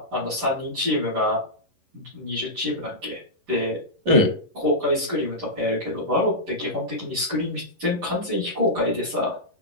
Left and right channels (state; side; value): late; left; 11 ms